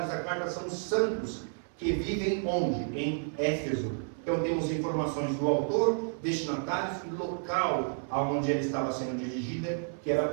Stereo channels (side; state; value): left; silent; 57 dB below the other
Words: da carta são os santos que vivem onde? Em Éfeso. Então temos informações do autor, destinatários e local aonde ela estava sendo dirigida, que era